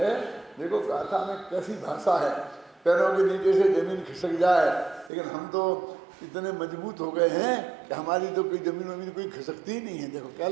देखो गाथा में कैसी भाषा है, पैरों के नीचे से जमीन खिसक जाए, लेकिन हम तो इतने मजबूत हो गए हैं कि हमारी तो कोई जमीन कोई खिसकती ही नहीं है। देखो क्या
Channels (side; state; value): left; drops out; at 5.1 s